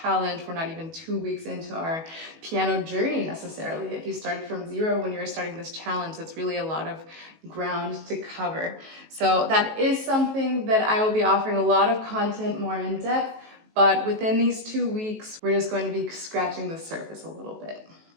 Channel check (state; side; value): late; left; 19 ms